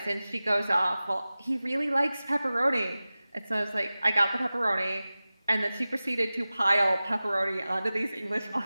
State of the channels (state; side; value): inverted; both; correlation -0.97